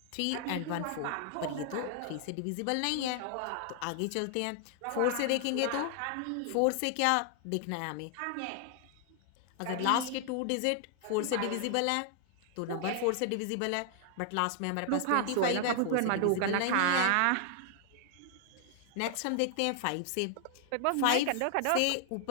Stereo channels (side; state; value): both; different; correlation 0.00